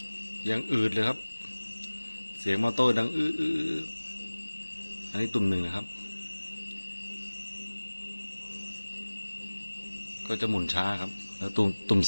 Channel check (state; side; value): inverted; both; correlation -1.00